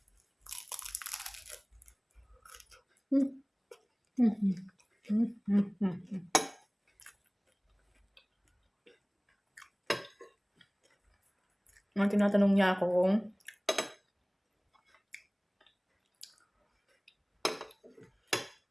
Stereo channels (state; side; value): identical; both; correlation 1.00